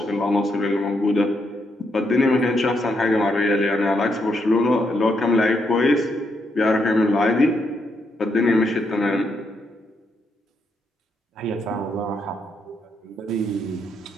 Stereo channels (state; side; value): normal; both; correlation 0.78